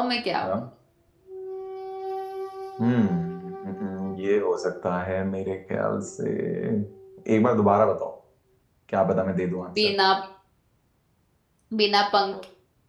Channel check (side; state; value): both; identical; correlation 1.00